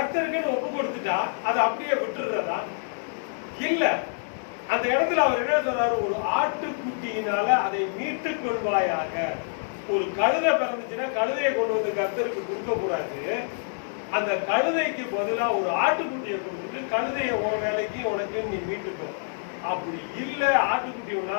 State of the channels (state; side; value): silent; right; digital silence